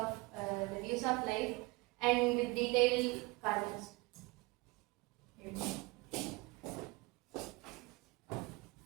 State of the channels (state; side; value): quieter; left; 24.6 dB